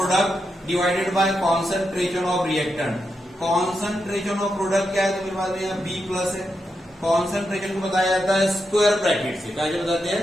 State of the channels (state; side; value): normal; both; correlation 0.85